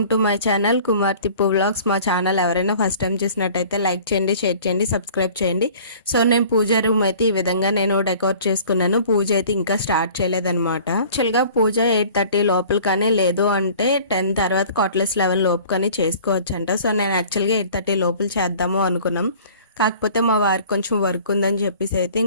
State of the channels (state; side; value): inverted; both; correlation -0.48